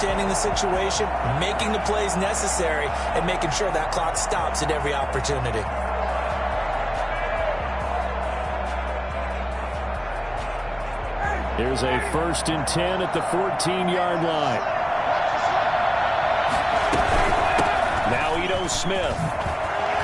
the situation, making the plays necessary, and making sure that clock stops at every opportunity. Here's a first and 10 at the 14-yard line. Now Ito Smith.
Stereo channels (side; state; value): both; identical; correlation 1.00